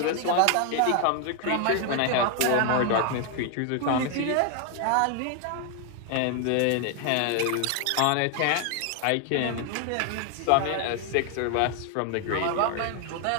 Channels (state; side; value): different; both; correlation 0.00